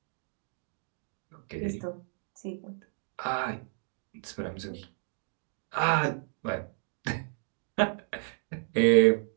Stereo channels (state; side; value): silent; left; digital silence